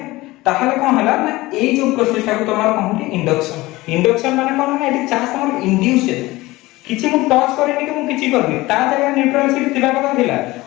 ताहले कोन हला ना ए जो प्रोसेस को तमार कहूटी इंडक्शन माने कोन ना एटी चार्ज तमार इंड्यूस है किछि मु टच करेनी कि मु किछि करबी ता जगह न्यूट्रल शीट थिबा कथा थिला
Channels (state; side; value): quieter; right; 19.6 dB